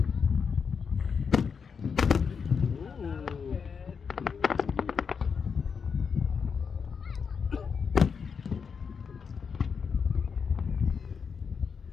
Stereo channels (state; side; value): quieter; right; 6.1 dB